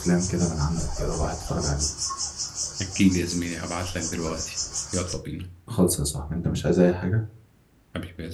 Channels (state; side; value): identical; both; correlation 1.00